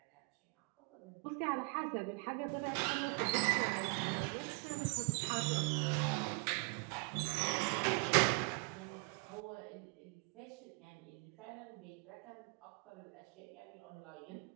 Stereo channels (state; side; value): quieter; left; 36.5 dB